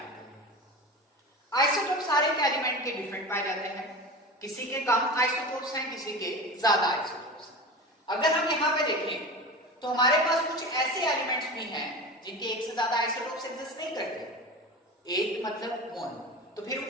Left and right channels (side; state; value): both; normal; correlation 0.30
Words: करना। आइसोटोप सारे के एलिमेंट के डिफरेंट पाए जाते हैं, किसी के कम आइसोटोप्स हैं, किसी के ज्यादा आइसोटोप्स हैं। अगर हम यहाँ पे देखें तो हमारे पास कुछ ऐसे एलिमेंट्स भी हैं जिनके एक से ज्यादा आइसोटोप्स एग्जिस्ट नहीं करते, एक मतलब मोनो। तो फिर